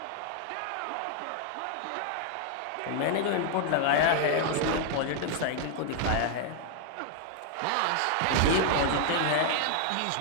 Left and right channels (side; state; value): both; different; correlation 0.00